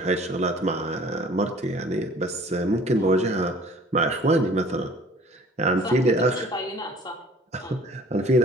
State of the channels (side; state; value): both; normal; correlation 0.51